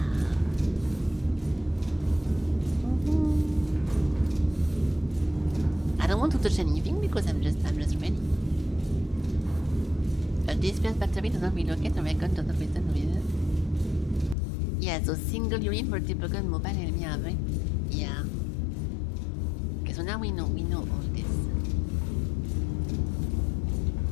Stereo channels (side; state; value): right; drops out; at 14.4 s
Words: I don't want to touch anything because I'm just ready. A disperse battery does not relocate, a recon does not return with it. Yeah, so single unit for typical mobile enemy array. Yeah. Okay, so now we know all this.